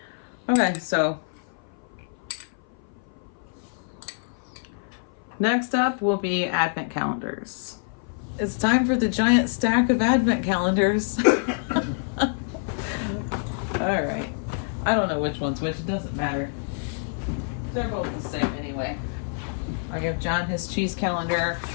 Okay, so next up will be advent calendars. It's time for the giant stack of advent calendars. All right. I don't know which one's which. It doesn't matter. They're both the same anyway. I give John his cheese calendar.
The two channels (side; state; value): right; silent; 57 dB below the other